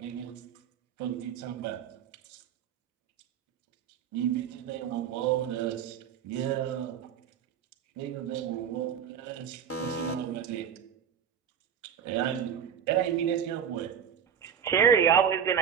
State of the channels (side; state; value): left; quieter; 8.3 dB